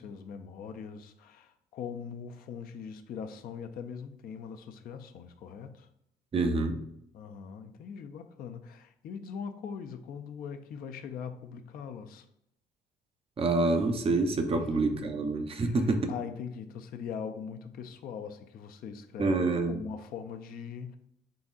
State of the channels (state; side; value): normal; both; correlation 0.62